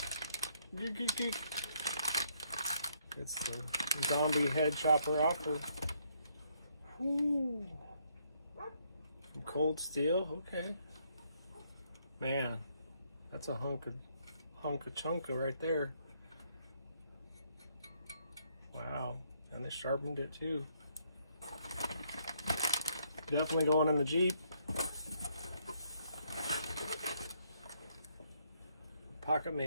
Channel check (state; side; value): inverted; both; correlation -0.72